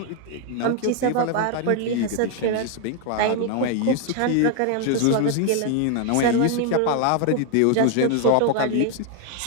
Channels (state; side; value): different; both; correlation 0.01